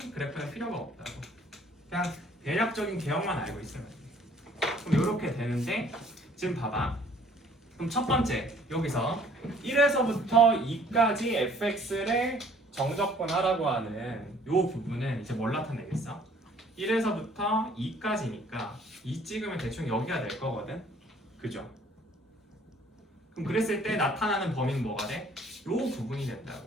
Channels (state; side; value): normal; both; correlation 0.57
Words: 그래프는 필요가 없다고. 그냥 대략적인 개형만 알고 있으면 돼. 그럼 이렇게 되는데 지금 봐봐. 그럼 첫 번째 여기서 1에서부터 2까지 fx를 정적분하라고 하는 이 부분은 이제 뭘 나타내겠어? 1에서부터 2까지니까 2 찍으면 대충 여기가 될 거거든. 그죠? 그럼 그랬을 때 나타나는 범위는 뭐가 돼? 이 부분이